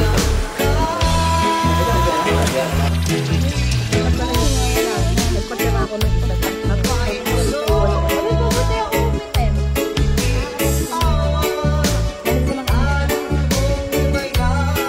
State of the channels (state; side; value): identical; both; correlation 1.00